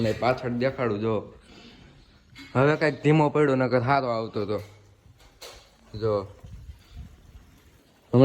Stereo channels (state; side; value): identical; both; correlation 1.00